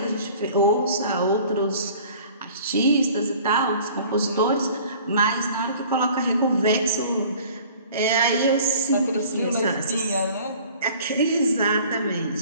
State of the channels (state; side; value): inverted; both; correlation -0.49